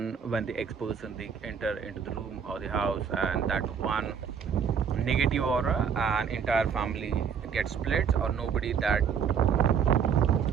when the ex person they enter into the room or the house, and that one negative aura and entire family gets split, or nobody that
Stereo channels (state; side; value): quieter; left; 7.1 dB